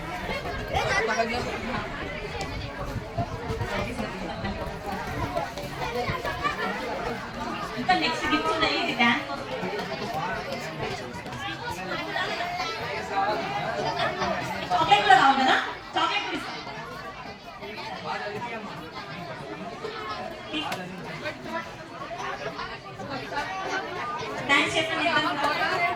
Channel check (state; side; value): identical; both; correlation 1.00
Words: ఇంకా నెక్స్ట్ గిఫ్ట్ ఉన్నాయి, ఇది డాన్స్ చాక్లెట్ కూడా కావాలి కదా, చాక్లెట్ కూడా ఇస్తాం. థ్యాంక్స్ చెప్పండి.